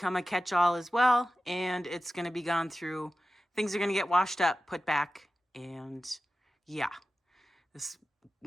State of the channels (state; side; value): normal; both; correlation 0.94